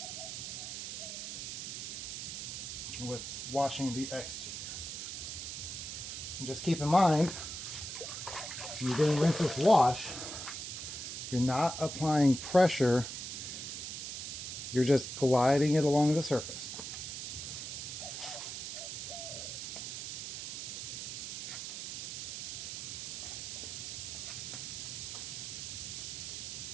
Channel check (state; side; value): noise; right; hiss, 6 dB below the sound